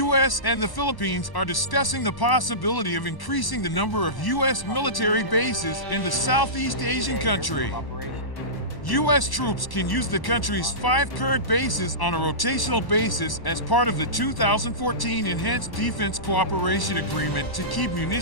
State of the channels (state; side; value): late; right; 1.1 ms